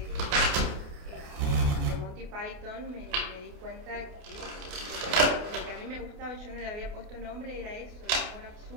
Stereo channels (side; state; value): left; late; 29 ms